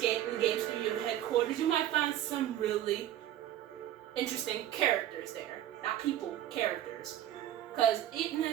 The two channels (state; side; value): quieter; left; 12.4 dB